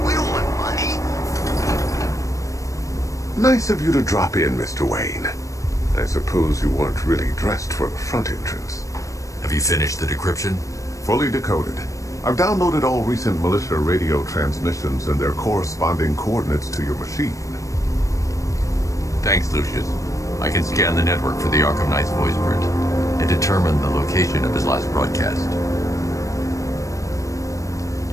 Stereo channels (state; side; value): late; right; 0.16 ms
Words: Nice of you to drop in, Mr. Wayne. I suppose you weren't really dressed for the front entrance. Have you finished the decryption? Fully decoded. I've downloaded all recent militia radio transmissions and their corresponding coordinates to your machine. Thanks, Lucius. I can scan the network for the Arkham Knight's voice print and determine the location of his last broadcast.